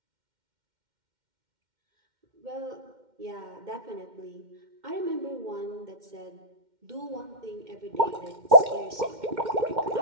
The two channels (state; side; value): late; left; 2.1 ms